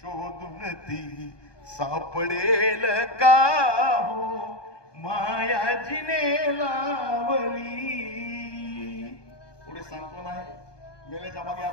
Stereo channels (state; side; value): late; right; 1.2 ms